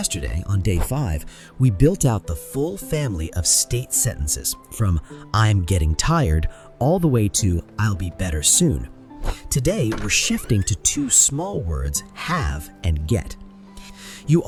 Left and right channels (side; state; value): both; identical; correlation 1.00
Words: on day 5, we built out the full family of state sentences, from I'm getting tired all the way to I'll be better soon. Today, we're shifting to 2 small words, have and get. You